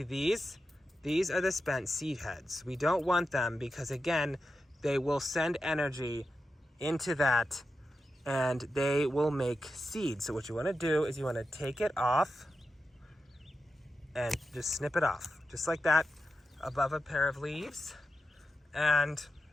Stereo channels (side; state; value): both; normal; correlation 0.89